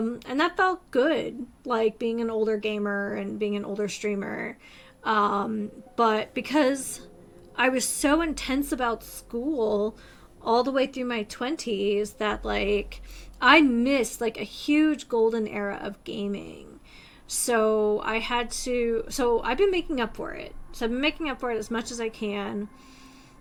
that felt good, like being an older gamer and being an older streamer. But because I was so intense about school all the way through my 20s that like I missed like a huge golden era of gaming. So I've been making up for it. So I've been making up for it as much as I can.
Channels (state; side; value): identical; both; correlation 1.00